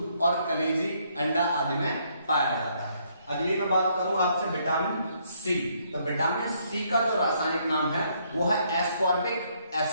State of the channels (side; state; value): both; inverted; correlation -0.70